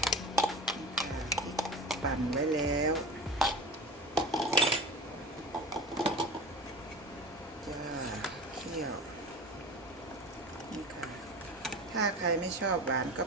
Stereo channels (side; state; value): both; normal; correlation 0.33